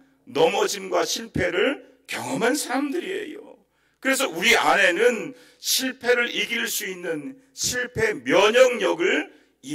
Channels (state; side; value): identical; both; correlation 1.00